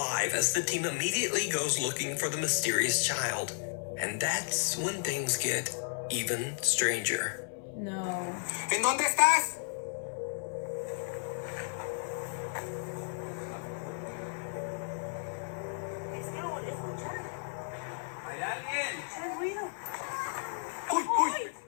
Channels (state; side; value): silent; right; 56 dB below the other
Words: as the team immediately goes looking for the mysterious child. And that's when things get even stranger. No. ¿En dónde estás? ¿Hay alguien? ¡Uy, uy!